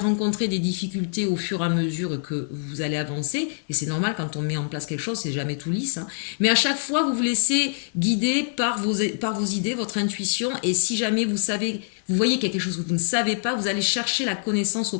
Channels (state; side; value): silent; right; digital silence